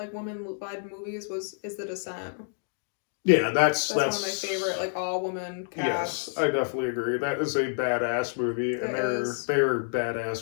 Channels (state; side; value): silent; right; digital silence